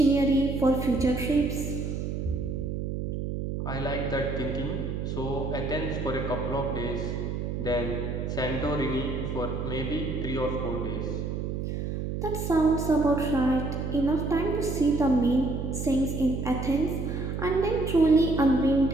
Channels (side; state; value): right; noise; hum, 3 dB below the sound